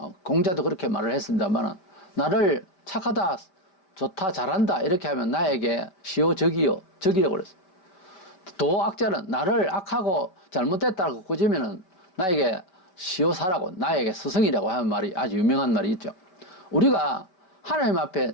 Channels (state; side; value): late; right; 5.4 ms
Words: 공자도 그렇게 말을 했습니다만 나를 착하다, 좋다, 잘한다 이렇게 하면 나에게 시오 적이요. 적이라고 그랬어요. 도악자는 나를 악하고 잘못됐다고 꾸짖으면 나에게 시오사라고 나에게 스승이라고 하는 말이 아주 유명한 말이 있죠. 우리가 하나님 앞에